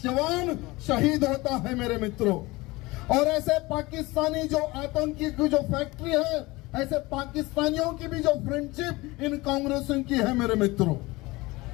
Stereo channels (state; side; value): quieter; right; 21.7 dB